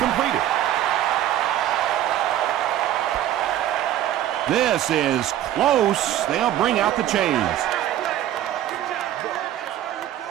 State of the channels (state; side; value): quieter; left; 12.1 dB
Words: This is close. They'll bring out the chains.